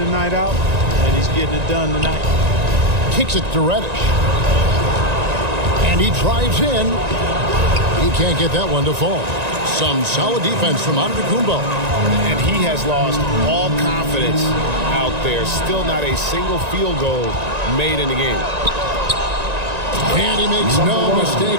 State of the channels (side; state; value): left; late; 1.9 ms